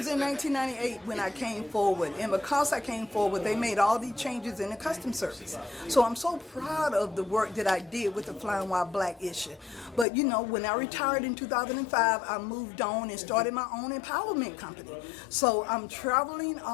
in 1998 when I came forward. And because I came forward, they made all these changes in the Customs Service. So I'm so proud of the work that I did with the Flying While Black issue. But, you know, when I retired in 2005, I moved on and started my own empowerment company. So I'm traveling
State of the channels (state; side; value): drops out; right; at 10.1 s